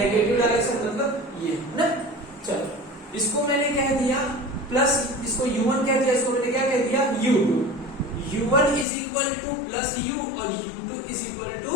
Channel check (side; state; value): right; drops out; at 8.8 s